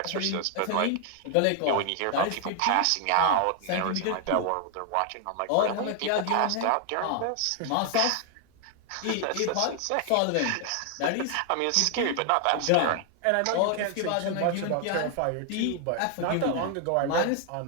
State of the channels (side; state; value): both; different; correlation 0.00